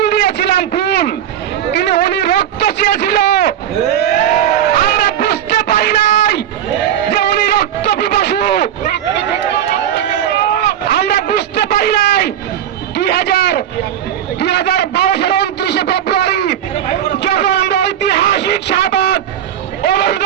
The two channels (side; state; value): left; quieter; 10.3 dB